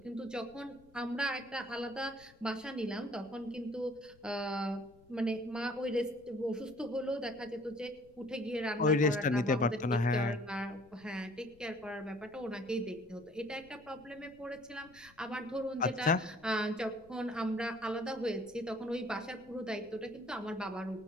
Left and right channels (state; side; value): noise; left; rumble, 27 dB below the sound